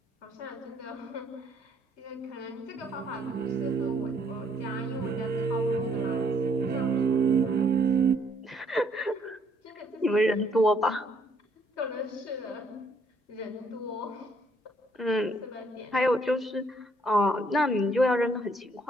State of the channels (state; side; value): normal; both; correlation 0.67